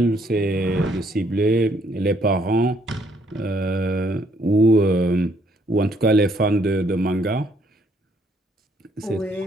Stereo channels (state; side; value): normal; both; correlation 0.68